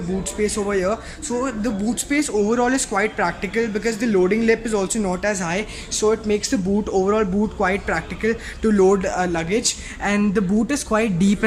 space over here. So the boot space overall is quite practical because the loading lip is also not as high, so it makes the overall boot quite practical to load luggage. And the boot is quite deep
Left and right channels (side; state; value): both; identical; correlation 1.00